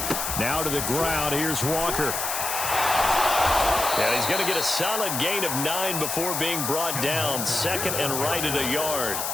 Now to the ground. Here's Walker. And he's going to get a solid gain of 9 before being brought down. 2nd and right at a yard.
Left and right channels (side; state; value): left; noise; hiss, 2 dB below the sound